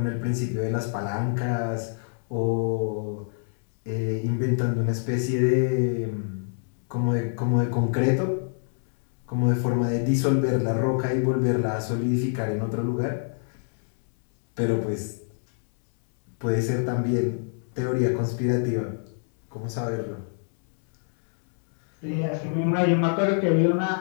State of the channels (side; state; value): right; silent; 61 dB below the other